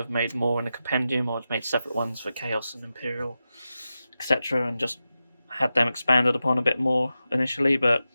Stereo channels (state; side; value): inverted; both; correlation -0.91